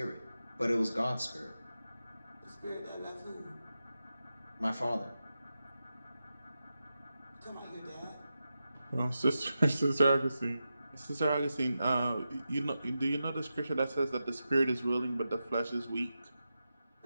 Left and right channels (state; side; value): inverted; both; correlation -0.90